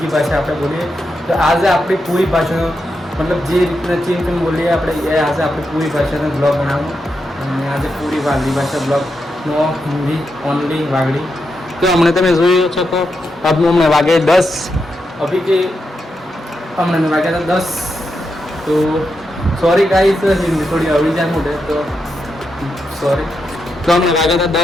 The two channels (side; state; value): both; normal; correlation 0.85